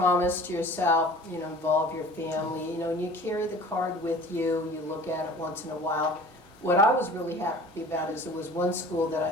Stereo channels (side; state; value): both; normal; correlation 0.45